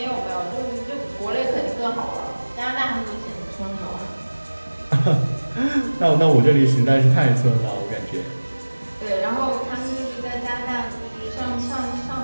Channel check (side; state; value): both; inverted; correlation -1.00